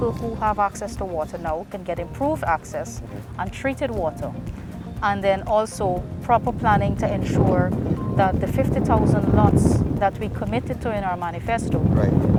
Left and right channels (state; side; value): identical; both; correlation 1.00